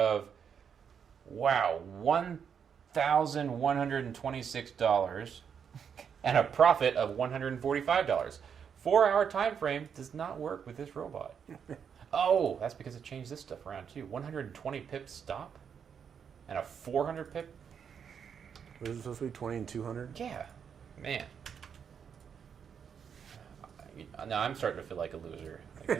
wow, $1,126 and a profit of $145. 4-hour time frame does not work with this robot. Oh, that's because it changed this stuff around too. 120 pip stop and a 400 pip. Was it supposed to be 20 and 200? Yeah, man. Now I'm starting to feel like a loser.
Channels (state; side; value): quieter; left; 7.3 dB